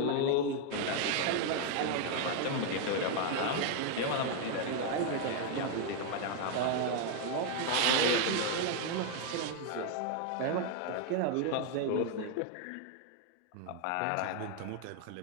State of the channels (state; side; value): different; both; correlation 0.01